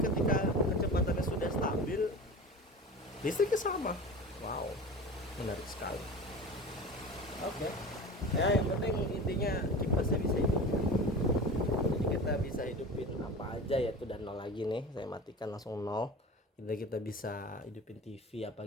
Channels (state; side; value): normal; both; correlation 0.33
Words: kecepatannya sudah stabil, listriknya sama. Wow, menarik sekali. Oke. Ya, yang penting intinya kipasnya bisa hidup. Jadi kita bisa hidupin apa aja ya, tuh dan 0 lagi nih. Saya matikan langsung 0. Kita bisa hidupin TV apa